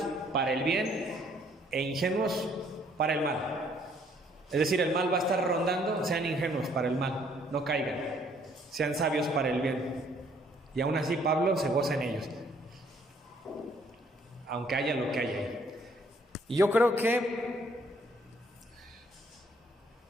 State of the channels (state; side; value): normal; both; correlation 0.64